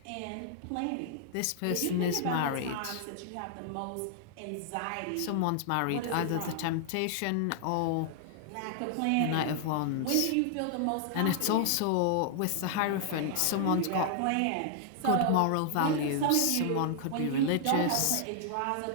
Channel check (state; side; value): different; both; correlation -0.01